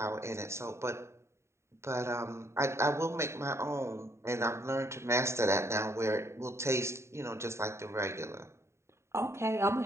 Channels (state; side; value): late; left; 0.13 ms